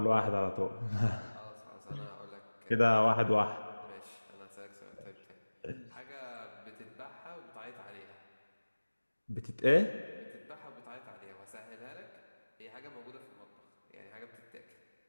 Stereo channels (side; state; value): both; inverted; correlation -1.00